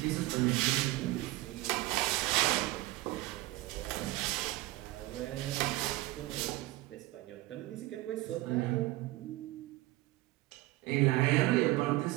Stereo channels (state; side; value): quieter; left; 18.8 dB